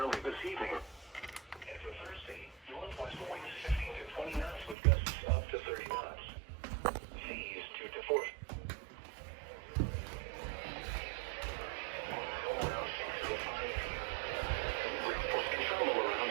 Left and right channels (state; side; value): drops out; left; at 4.8 s